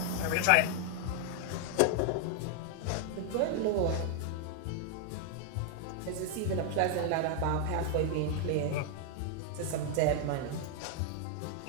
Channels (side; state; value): both; different; correlation 0.00